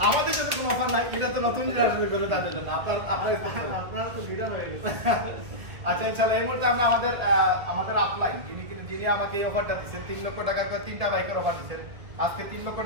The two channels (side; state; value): left; late; 2.0 ms